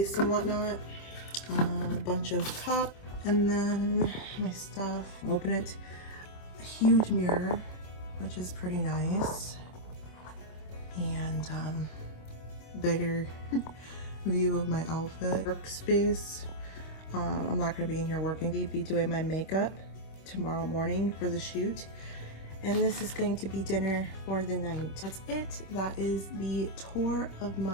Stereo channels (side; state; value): right; late; 25 ms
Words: and whatnot, a bunch of cups, and then my stuff. Open it. A huge mirror, which is pretty nice. And bigger view of my outfit. Workspace. I'm not going to be in here working. I'll be doing my makeup tomorrow morning for the shoot. And this is going to be dinner for the night. That's it. That is the tour of